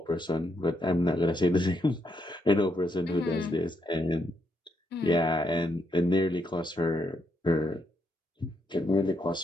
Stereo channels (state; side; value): normal; both; correlation 0.78